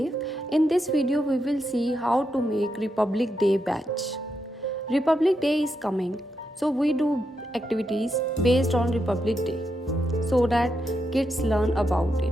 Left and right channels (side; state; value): both; normal; correlation 0.83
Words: In this video we will see how to make Republic Day badge. Republic Day is coming, so we do activities based on Republic Day so that kids learn about